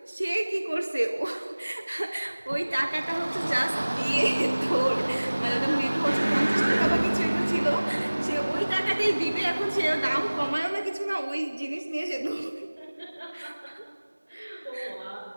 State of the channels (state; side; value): inverted; both; correlation -1.00